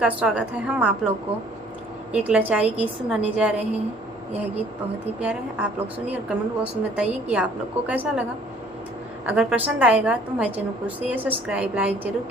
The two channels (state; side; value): normal; both; correlation 0.57